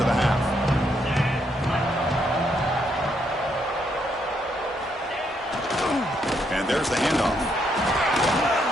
the half? And there's the handoff.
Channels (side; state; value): both; normal; correlation 0.75